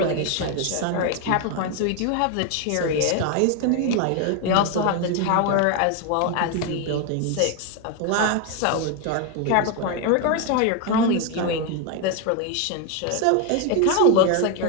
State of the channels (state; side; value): different; both; correlation 0.01